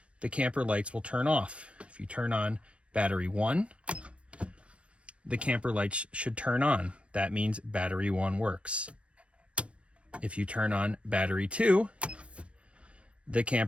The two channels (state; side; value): late; left; 0.061 ms